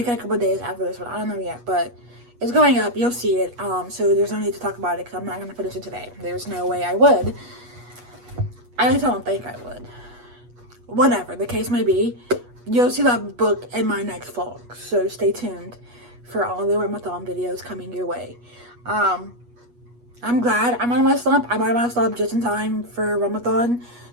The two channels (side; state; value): left; late; 8.3 ms